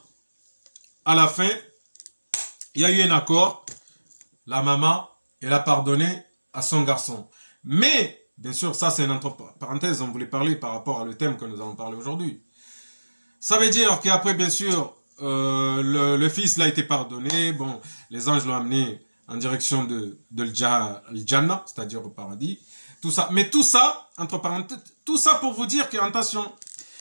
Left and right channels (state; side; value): inverted; both; correlation -1.00